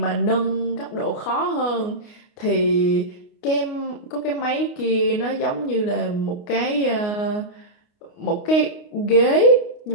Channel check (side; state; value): right; late; 29 ms